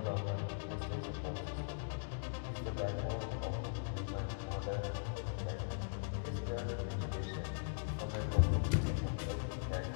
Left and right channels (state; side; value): silent; right; digital silence